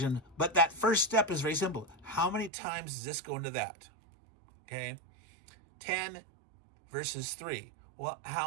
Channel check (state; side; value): drops out; left; at 2.5 s